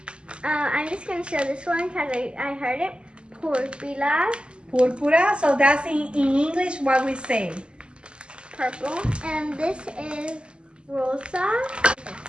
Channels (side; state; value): left; late; 0.051 ms